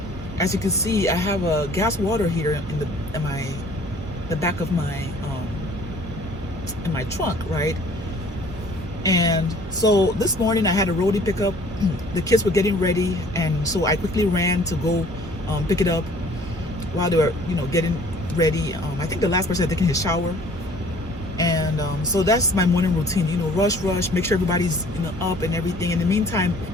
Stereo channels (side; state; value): both; normal; correlation 0.53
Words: as you can see, I have a gas water heater in the back of my in my trunk, right? And so this morning I had a roadie pickup. The kids were getting ready, and so I quickly ran to go pick it up while they were, getting ready. I think the last person had taken his shower, and so that's my morning routine. Rush, make sure everybody's up and everything. In the meantime,